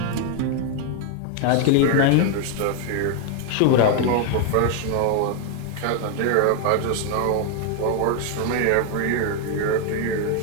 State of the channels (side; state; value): both; different; correlation 0.01